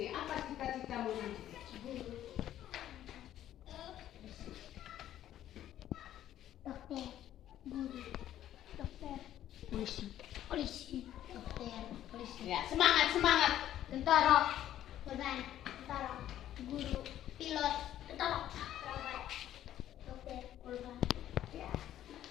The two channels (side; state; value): right; quieter; 12.0 dB